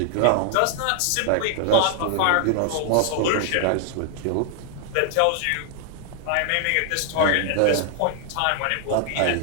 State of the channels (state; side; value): different; both; correlation 0.00